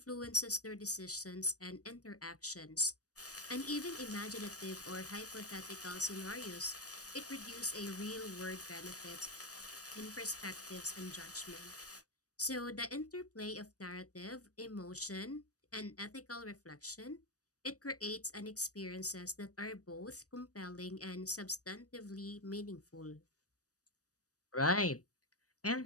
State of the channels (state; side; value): late; right; 0.66 ms